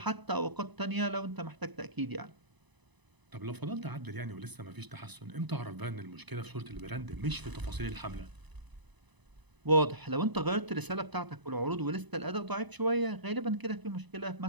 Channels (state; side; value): late; left; 1.0 ms